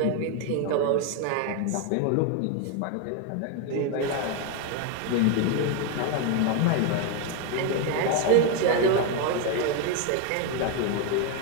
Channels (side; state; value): both; different; correlation 0.01